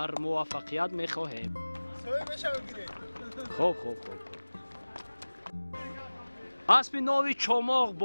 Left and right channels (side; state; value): both; inverted; correlation -1.00